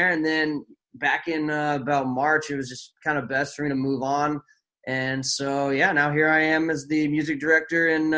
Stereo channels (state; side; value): identical; both; correlation 1.00